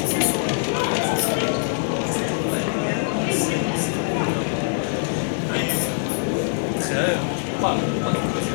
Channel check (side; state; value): right; silent; 63 dB below the other